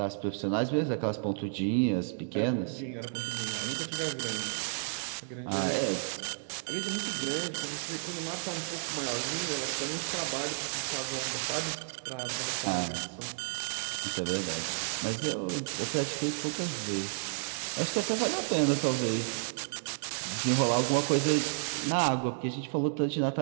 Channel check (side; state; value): left; silent; digital silence